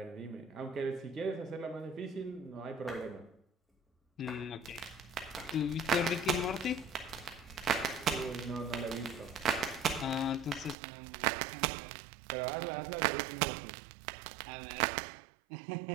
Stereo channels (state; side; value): drops out; left; at 10.8 s